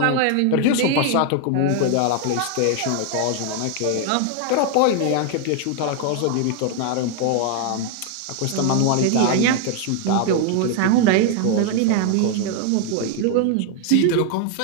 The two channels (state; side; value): different; both; correlation 0.00